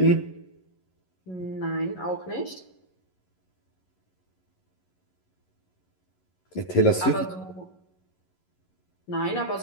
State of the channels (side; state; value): right; late; 11 ms